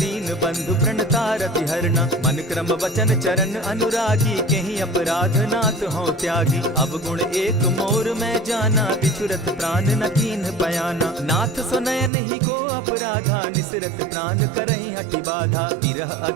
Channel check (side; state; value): left; drops out; at 12.1 s